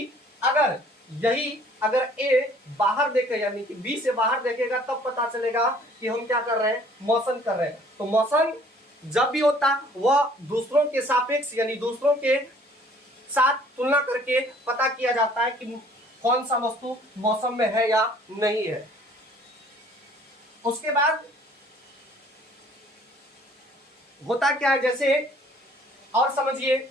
अगर ए बाहर देखे, यानी कि बी से बाहर देखेगा, तब पता चलेगा कि हम क्या कर रहे हैं, मोशन कर रहे हैं। तो मोशन जब भी होता वह दूसरों के सापेक्ष, यानी दूसरों के साथ तुलना करके पता किया जाता है कि कौन सा वस्तु मौसम में है या नहीं है। उसके बाद होता क्या है, जैसे और समझिए,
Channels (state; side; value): normal; both; correlation 0.56